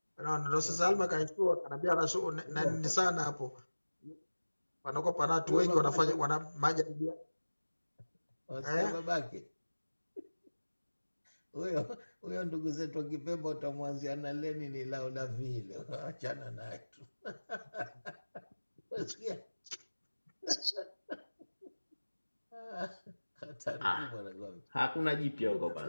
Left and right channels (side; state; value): both; inverted; correlation -1.00